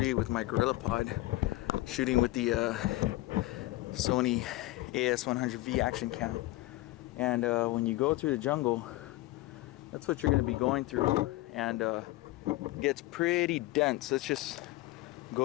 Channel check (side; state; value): right; quieter; 18.5 dB